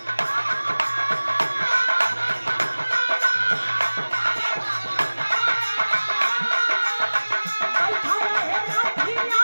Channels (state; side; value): inverted; both; correlation -1.00